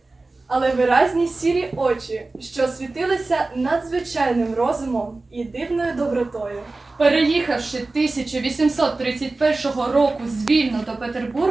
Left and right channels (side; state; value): left; quieter; 3.3 dB